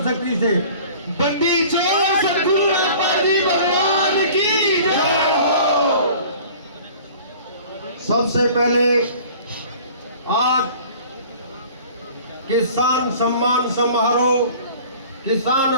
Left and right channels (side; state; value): both; inverted; correlation -0.46